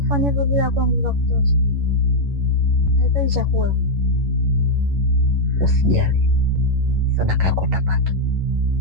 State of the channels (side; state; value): left; late; 11 ms